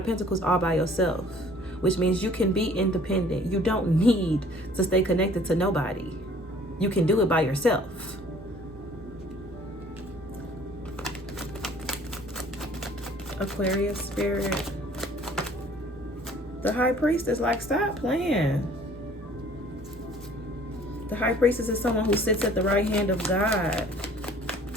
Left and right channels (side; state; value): both; normal; correlation 0.54